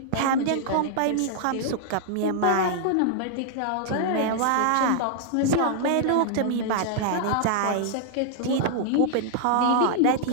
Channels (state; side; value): different; both; correlation -0.01